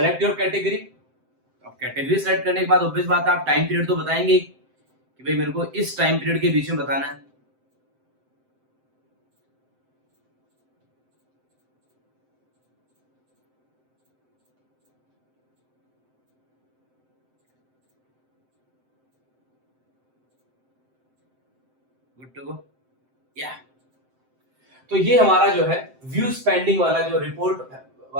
योर कैटेगरी। अब कैटेगरी सेलेक्ट करने के बाद ऑब्वियस बात है आप टाइम पीरियड तो बताएंगे कि भाई मेरे को इस टाइम पीरियड के बीच में बताना है। गुड टू गो, या। तो ये हमारा जो है व्यू स्पेंडिंग वाला जो रिपोर्ट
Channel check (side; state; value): left; late; 7.7 ms